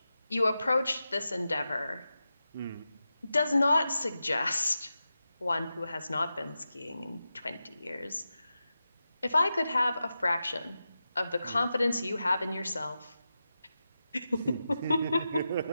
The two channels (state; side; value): inverted; both; correlation -0.91